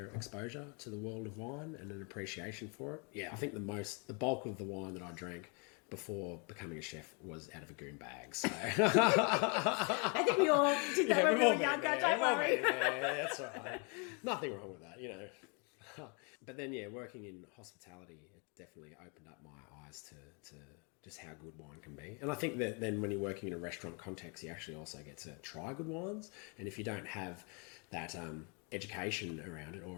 exposure to the world of wine and an appreciation for it. Yeah, I think the bulk of the wine that I drank before becoming a chef was out of a goon bag. So I think we all did that when we were younger, don't worry. Yeah, that's right. Nothing wrong with that, But then, working in hospitality, it definitely opened up my eyes to just how good wine can be. And I think that then when you're working in a restaurant context, you actually also get to try good wines. And if you don't have that education around it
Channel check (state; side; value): quieter; right; 34.9 dB